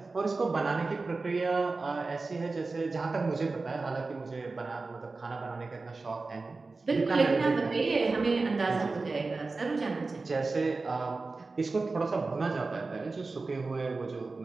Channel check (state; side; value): quieter; left; 3.8 dB